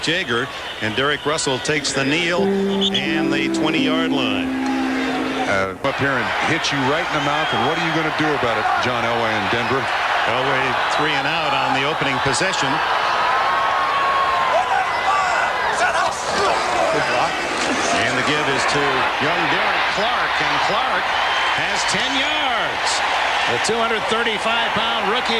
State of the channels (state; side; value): identical; both; correlation 1.00